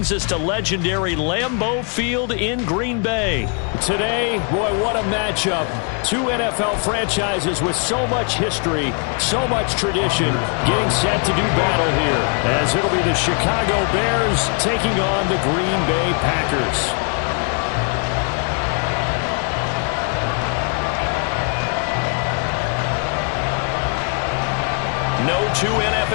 us to legendary Lambeau Field in Green Bay. Today, boy, what a matchup. Two NFL franchises with so much history, so much tradition, getting set to do battle here, as it'll be the Chicago Bears taking on the Green Bay Packers. No two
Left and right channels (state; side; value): quieter; right; 39.5 dB